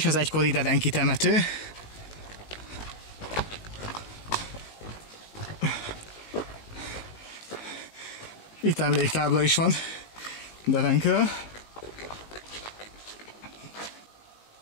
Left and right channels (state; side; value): late; right; 19 ms